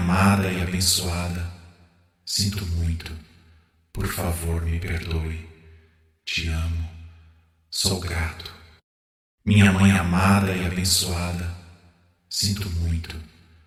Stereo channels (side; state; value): both; identical; correlation 1.00